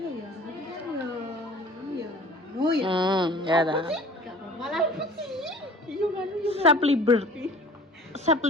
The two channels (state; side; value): normal; both; correlation 0.46